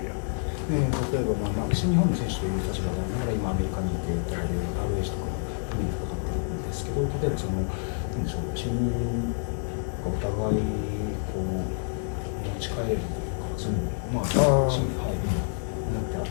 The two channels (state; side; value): silent; right; digital silence